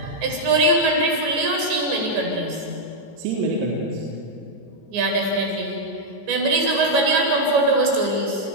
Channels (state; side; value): late; left; 14 ms